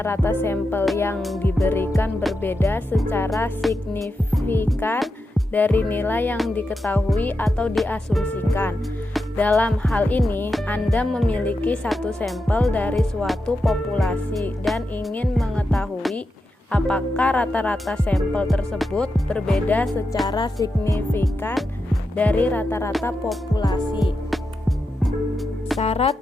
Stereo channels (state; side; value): normal; both; correlation 0.88